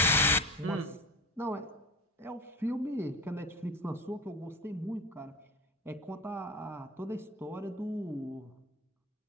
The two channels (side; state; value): both; normal; correlation 0.28